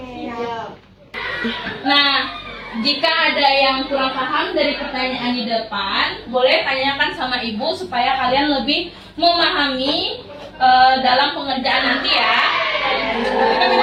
Nah, jika ada yang kurang paham dari pertanyaan di depan, boleh tanyakan sama Ibu supaya kalian lebih memahami dalam pengerjaan nanti ya.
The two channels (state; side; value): identical; both; correlation 1.00